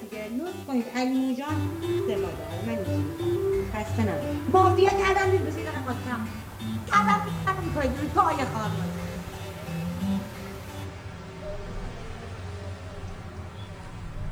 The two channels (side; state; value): both; identical; correlation 1.00